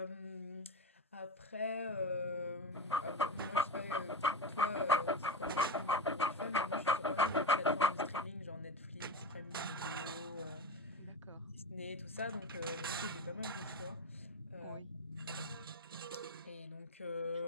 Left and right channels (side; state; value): both; normal; correlation 0.22